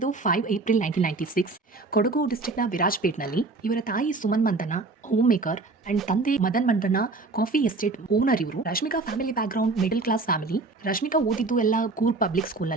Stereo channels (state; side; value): quieter; left; 3.6 dB